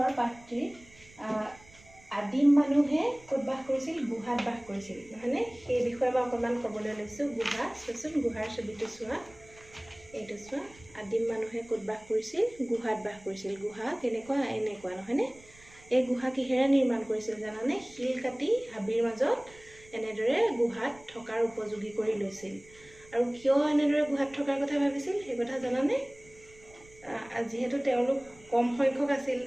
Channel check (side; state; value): right; noise; rumble, 25 dB below the sound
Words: পাঠটিৰ আদিম মানুহে ক'ত বাস কৰিছিল? গুহাত বাস কৰিছিল, নহয়নে? সেই বিষয়ে মই অকণমান ক'বলৈ লৈছোঁ। গুহা, চোৱাচোন গুহাৰ ছবিটো চোৱা, এইটো চোৱা। আদিম মানুহে ক'ত বাস কৰিছিল? গুহাত বাস কৰিছিল। গুহা কেনেকুৱা? এনেকুৱা, নহয়নে? এই গুহা কিহেৰে নিৰ্মাণ কৰিছিল জানানে? শিল কাটি হাবিৰ মাজত এনেদৰে গুহাত থকাৰ উপযোগী কৰি লৈছিল। আৰু কিয় এনেদৰে গুহাত থকাৰ কথা ভাবিছিল সেই কথা জানানে? যিহেতু তেওঁলোক কম সংখ্যক আছিল